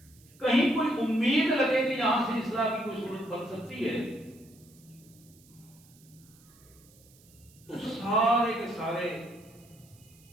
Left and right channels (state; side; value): noise; right; hiss, 27 dB below the sound